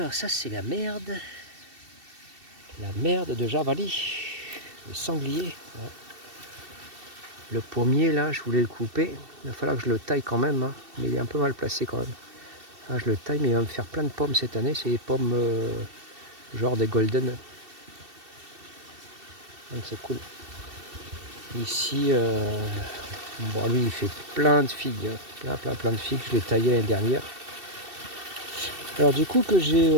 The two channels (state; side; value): late; left; 2.7 ms